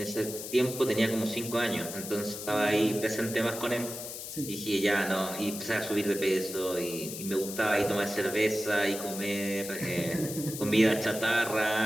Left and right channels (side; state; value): left; noise; hiss, 9 dB below the sound